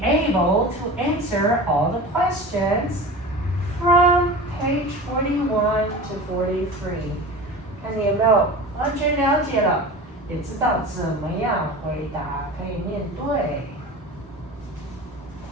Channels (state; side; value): normal; both; correlation 0.33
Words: able to answer all the questions from page 41 to 43. 看你有没有完全了解了，也知道怎么样回答，可以面对。